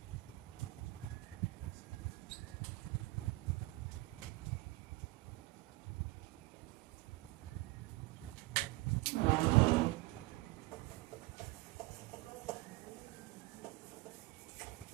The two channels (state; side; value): quieter; left; 21.0 dB